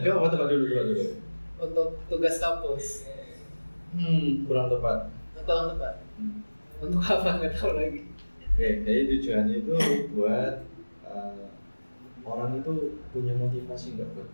Enggak apa tepat dulu. Untuk tugas kampus. Kurang tepat. Kurang tepat. Untuk apa nggak tahu lagi. Oke, jadi tujuannya itu buat orang itu punya motivasi nggak buat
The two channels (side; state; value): both; inverted; correlation -1.00